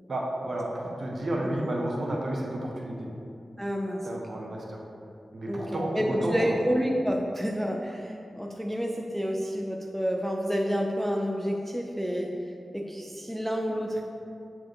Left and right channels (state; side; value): normal; both; correlation 0.95